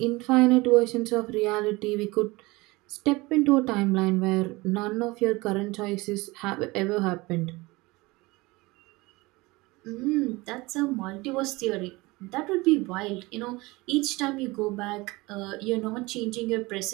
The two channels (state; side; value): quieter; left; 22.5 dB